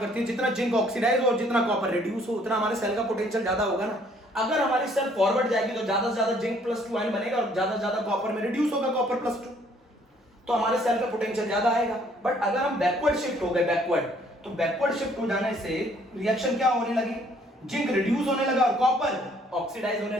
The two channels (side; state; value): both; normal; correlation 0.62